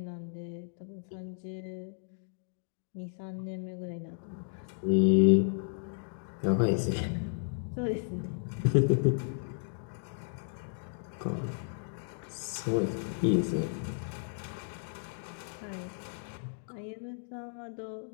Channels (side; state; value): right; silent; digital silence